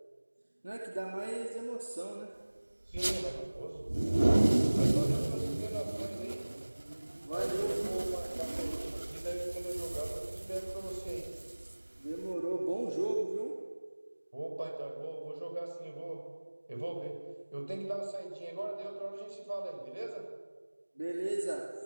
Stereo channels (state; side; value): inverted; both; correlation -1.00